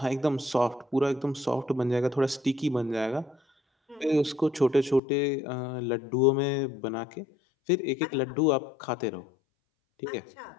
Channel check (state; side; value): drops out; right; at 5.0 s